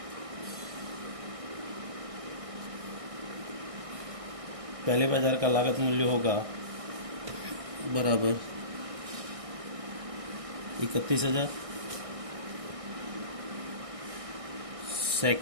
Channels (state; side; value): late; left; 1.6 ms